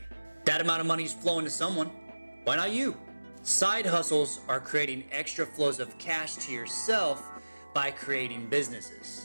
That amount of money is flowing to someone. Why not you? Side hustles are creating extra flows of cash to yourself by creating businesses.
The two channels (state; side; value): inverted; both; correlation -1.00